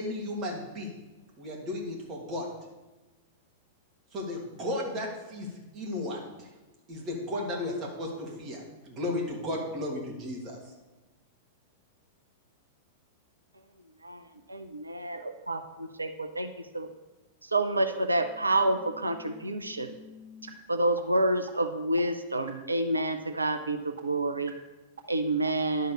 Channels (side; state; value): both; inverted; correlation -0.61